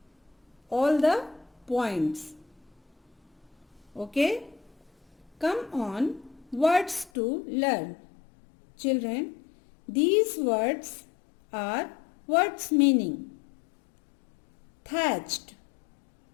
all the points. Okay? Come on, words to learn. Children, these words are words meaning. Thatched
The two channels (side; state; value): right; drops out; at 7.1 s